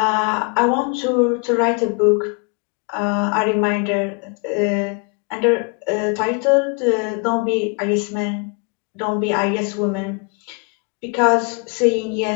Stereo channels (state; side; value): quieter; right; 34.3 dB